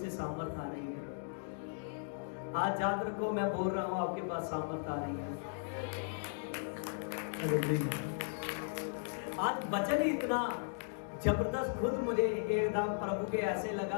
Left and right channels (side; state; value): right; silent; digital silence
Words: सामर्थ आ रही है। आज याद रखो, मैं बोल रहा हूं आपके पास सामर्थ आ रही है। आज वचन ही इतना जबरदस्त, खुद मुझे एकदम प्रभु के ऐसे